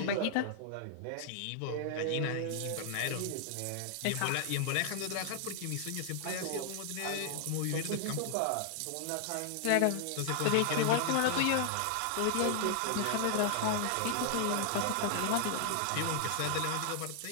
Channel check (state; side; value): different; both; correlation 0.00